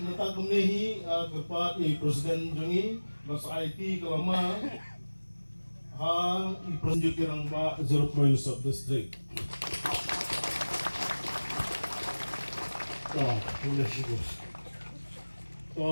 kumnehi kepat presiden jongi basa IT kelama i presiden kirang ba 0 point sub district.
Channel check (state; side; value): inverted; both; correlation -1.00